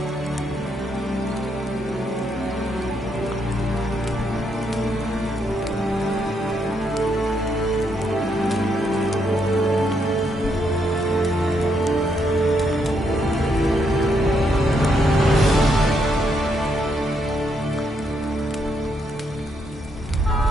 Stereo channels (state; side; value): normal; both; correlation 0.77